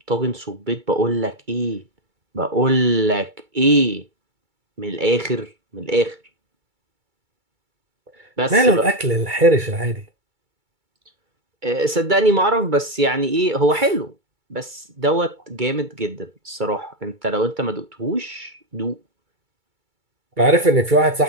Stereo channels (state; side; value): late; left; 2.3 ms